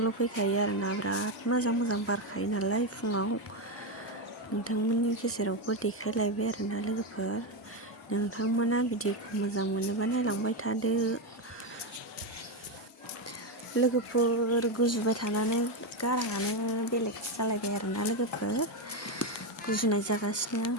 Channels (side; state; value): both; normal; correlation 0.09